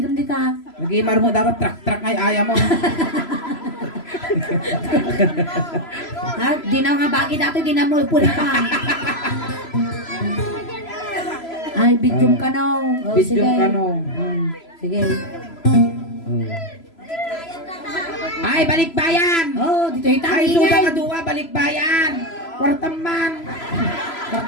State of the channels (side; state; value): right; late; 3.0 ms